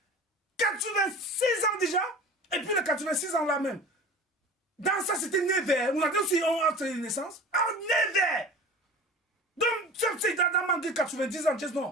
86 ans déjà. Et puis les 86 ans là même. Dans ça, c'était né vert. On a dit aussi, on a une naissance. Ah, né vert. Donc, c'est dans manqué 90 ans,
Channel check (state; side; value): normal; both; correlation 0.38